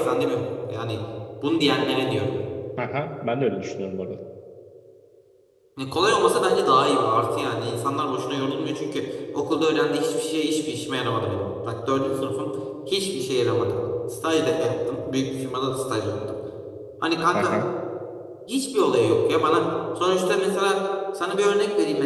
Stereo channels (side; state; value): both; identical; correlation 1.00